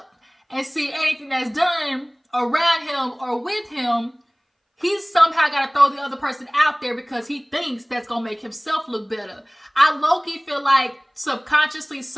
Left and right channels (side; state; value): both; identical; correlation 1.00